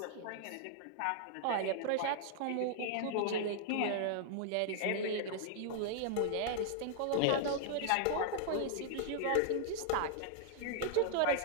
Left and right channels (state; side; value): different; both; correlation -0.01